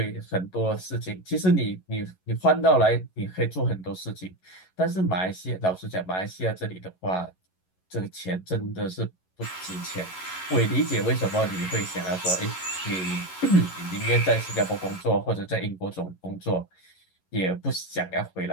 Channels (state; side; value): late; right; 11 ms